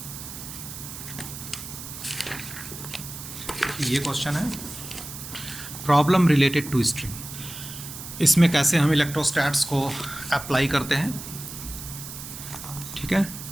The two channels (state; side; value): noise; right; hiss, 11 dB below the sound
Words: ये क्वेश्चन है प्रॉब्लम रिलेटेड टू स्ट्रिंग, इसमें कैसे हम इलेक्ट्रोस्टैट्स को अप्लाई करते हैं। ठीक है,